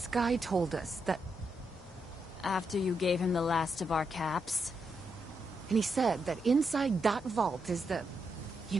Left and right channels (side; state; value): both; normal; correlation 0.82